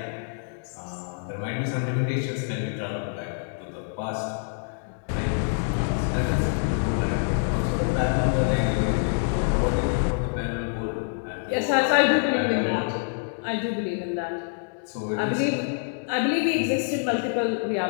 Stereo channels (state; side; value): silent; right; 61 dB below the other